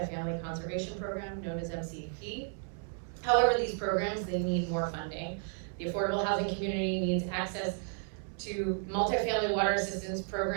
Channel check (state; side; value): silent; left; 56 dB below the other